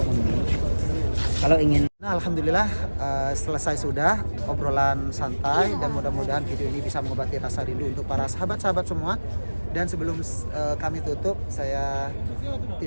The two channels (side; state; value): both; inverted; correlation -1.00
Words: kalau ingin Nah, alhamdulillah selesai sudah obrolan santai dan mudah-mudahan video ini bisa mengobati rasa rindu untuk para sahabat-sahabat semua. Dan sebelum kami tutup, saya